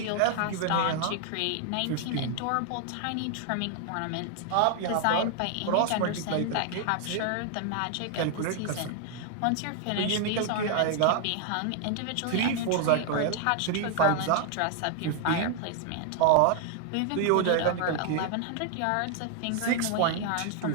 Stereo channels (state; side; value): different; both; correlation 0.00